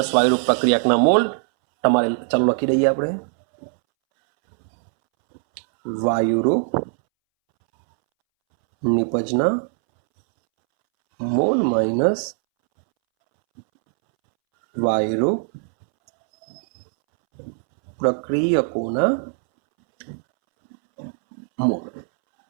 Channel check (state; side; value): silent; left; 65 dB below the other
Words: વાયુરૂપ પ્રક્રિયકના મોલ. તમારે ચાલો લખી દઈએ આપણે. વાયુરૂપ નિપજના મોલ માઇનસ વાયુરૂપ પ્રક્રિયકોના મોલ.